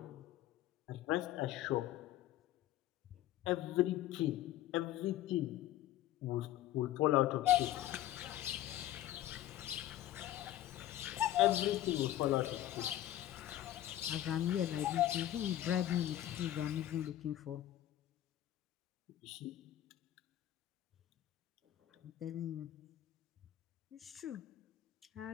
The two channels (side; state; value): right; quieter; 13.4 dB